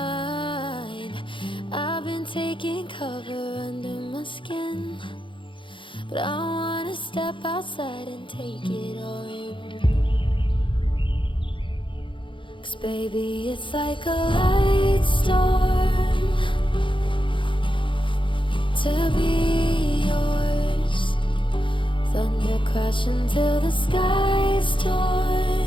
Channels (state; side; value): late; right; 0.24 ms